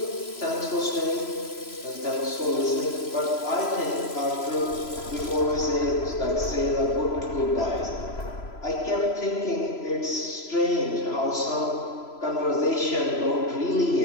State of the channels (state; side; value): late; right; 3.0 ms